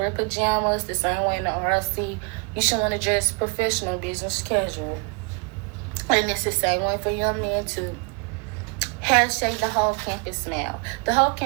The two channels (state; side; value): quieter; left; 34.6 dB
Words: pajamas the same way in the RLC. You should want to dress professional, business casual. And it's the same way for young men too. Hashtag the whole campus smile. The whole